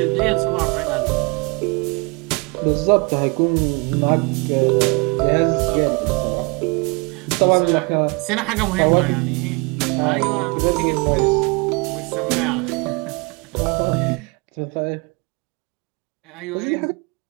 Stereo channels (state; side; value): quieter; left; 30.1 dB